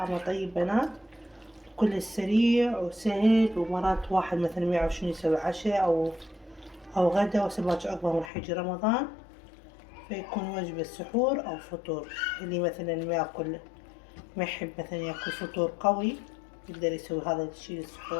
طيب بنات، كلش سريع وسهل، ومرات واحد مثلا ما يعرف شنو يسوي عشاء أو غدا وهسه باكر أكبر من حج رمضان، فيكون وجبة سحور أو فطور. اللي مثلا ما يحب مثلا ياكل فطور قوي يقدر يسوي هذا الشي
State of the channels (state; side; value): drops out; right; at 8.3 s